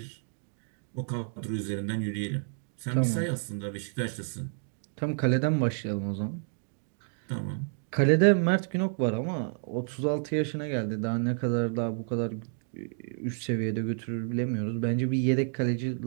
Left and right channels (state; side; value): silent; left; digital silence